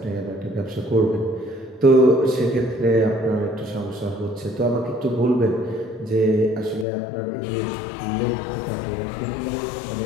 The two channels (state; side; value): drops out; right; at 6.9 s